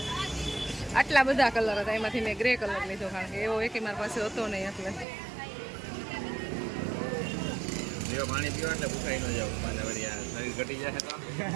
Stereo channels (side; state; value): left; drops out; at 5.1 s